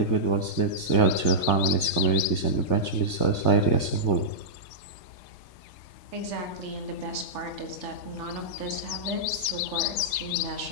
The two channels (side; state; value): right; late; 3.3 ms